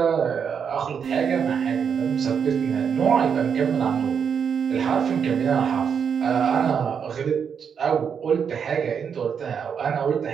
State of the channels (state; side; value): quieter; left; 7.0 dB